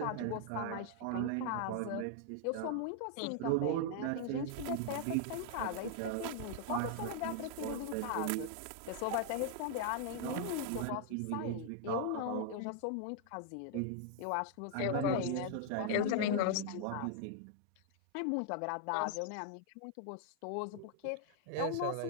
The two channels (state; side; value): different; both; correlation 0.00